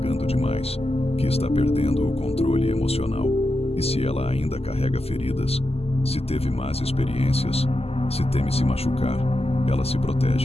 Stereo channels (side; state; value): right; late; 0.29 ms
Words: demais, que está perdendo o controle emocional. E se ela ainda carrega feridas, se teve más experiências, se teme se machucar, ela se